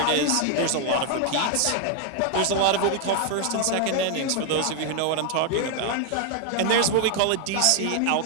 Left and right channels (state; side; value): different; both; correlation 0.00